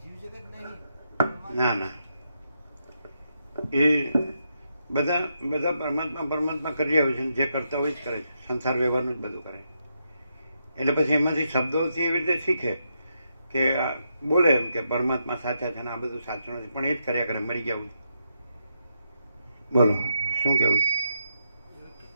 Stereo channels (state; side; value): inverted; both; correlation -0.81